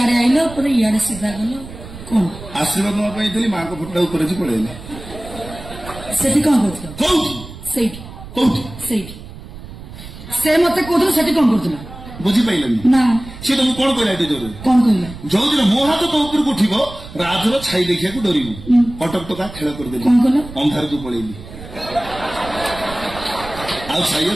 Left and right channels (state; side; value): noise; right; rumble, 14 dB below the sound